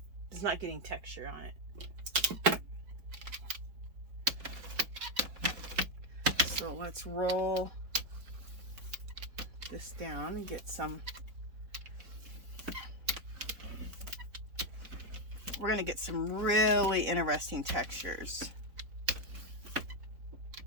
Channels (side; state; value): left; late; 4.2 ms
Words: texture on it. So let's roll this down and get some, we're going to get some really interesting textures.